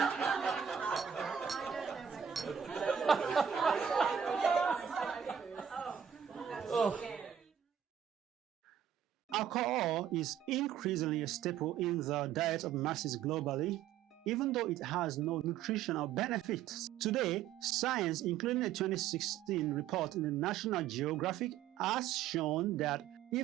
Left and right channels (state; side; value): quieter; left; 8.9 dB